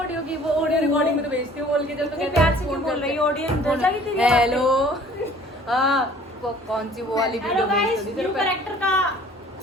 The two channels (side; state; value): both; normal; correlation 0.52